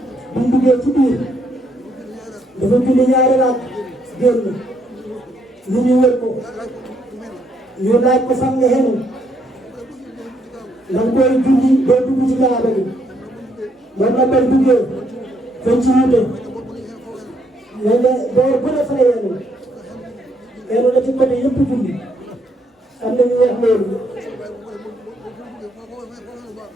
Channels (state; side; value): normal; both; correlation 0.72